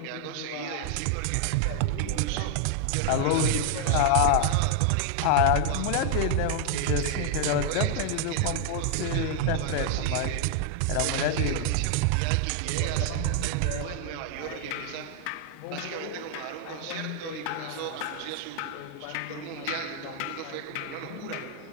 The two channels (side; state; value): both; different; correlation 0.00